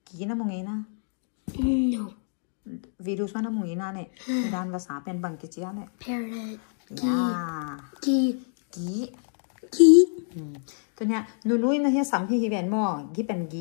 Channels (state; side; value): silent; right; 60 dB below the other